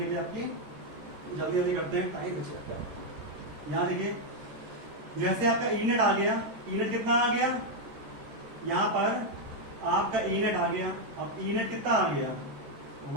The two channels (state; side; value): late; left; 13 ms